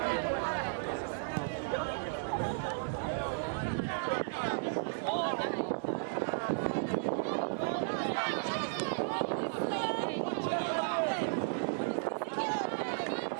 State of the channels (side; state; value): left; silent; digital silence